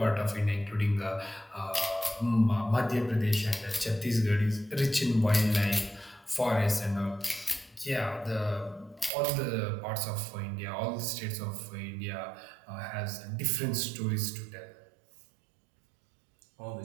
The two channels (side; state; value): left; drops out; at 9.1 s